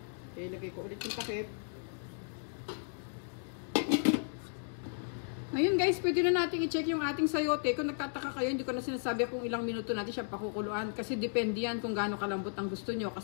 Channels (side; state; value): right; silent; digital silence